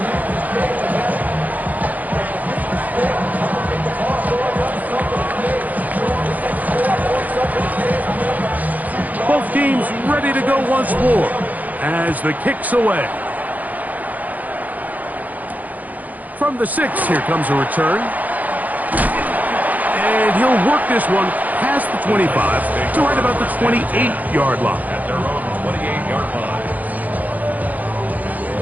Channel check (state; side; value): late; left; 0.079 ms